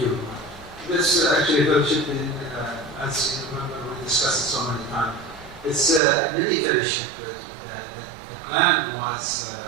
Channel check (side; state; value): left; drops out; at 6.0 s